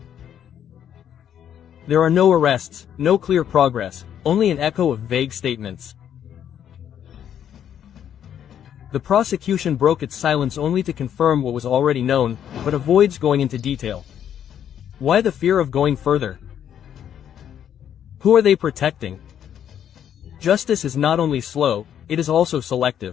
There are no arrests, no clear progress, only an echo of vague statements. The prosecution broke its silence only to confirm what was already known, but avoids going into detail. Why the fear of going further? Who are they protecting? Justice is not only slow, it is also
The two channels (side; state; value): right; quieter; 9.6 dB